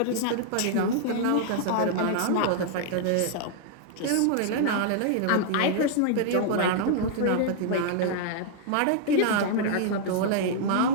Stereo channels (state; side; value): different; both; correlation -0.01